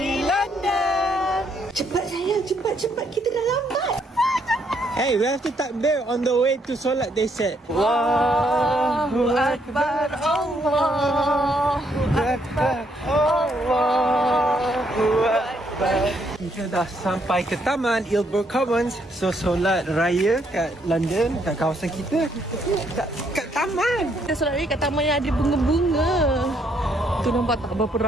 London. Cepat sayang, cepat. Kita dah lambat. Hey, we have to takbir on the way to solat, they said. Allahu Akbar, Allahu Akbar, Allahu Akbar. Kita dah sampai ke Taman Ilbur Commons. So, solat raya kat London, kat kawasan kita. Kat taman. Kita solat raya kat taman yang ada bunga-bunga. Tu nampak tak berapa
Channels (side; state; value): both; normal; correlation 0.72